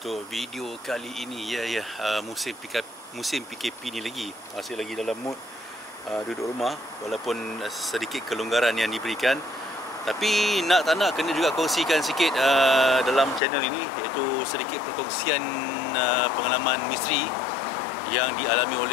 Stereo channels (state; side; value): drops out; right; at 13.4 s